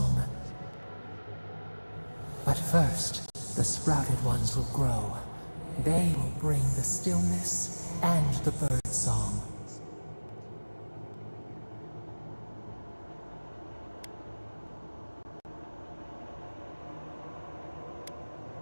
But first, the sprouted ones will grow. They will bring the stillness and the bird song.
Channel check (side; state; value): both; inverted; correlation -1.00